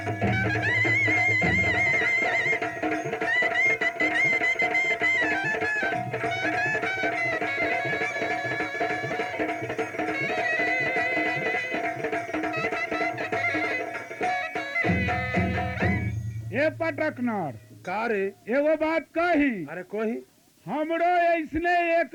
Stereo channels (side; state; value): both; identical; correlation 1.00